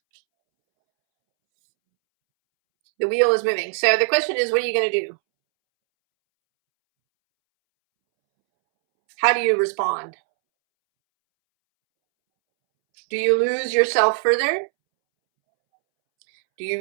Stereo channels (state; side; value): silent; left; 66 dB below the other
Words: The wheel is moving. So the question is, what are you going to do? How do you respond? Do you lose yourself further? Do you